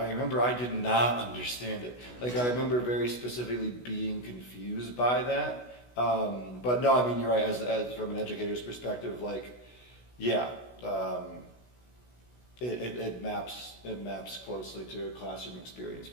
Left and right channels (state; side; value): late; right; 16 ms